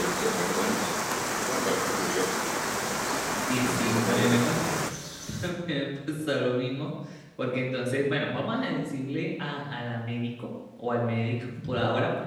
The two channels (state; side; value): identical; both; correlation 1.00